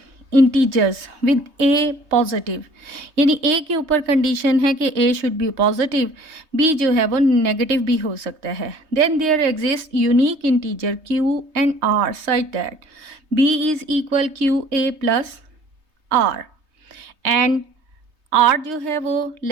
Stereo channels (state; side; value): late; left; 3.2 ms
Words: integers with A positive, यानी ए के ऊपर कंडीशन है कि A should be positive, B जो है वो नेगेटिव भी हो सकता है। Then there exist unique integer Q and R such that B is equal Q A plus R and R जो है वो